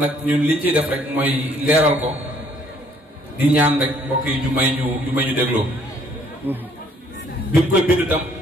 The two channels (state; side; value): normal; both; correlation 0.63